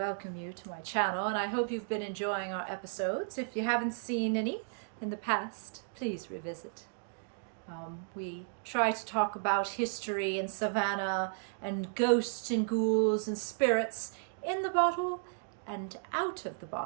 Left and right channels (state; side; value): silent; left; digital silence